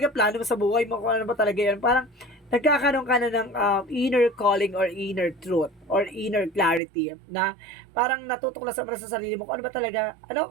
plano mo sa buhay mo? Kung ano ba talaga yan? Parang nagkakaroon ka na ng inner calling or inner truth or inner clarity na parang natutuklasan mo na sa sarili mo kung ano ba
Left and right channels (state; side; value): drops out; left; at 6.8 s